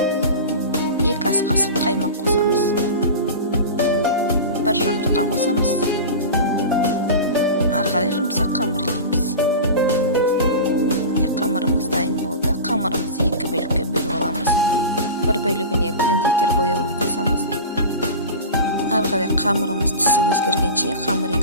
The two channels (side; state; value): both; inverted; correlation -0.30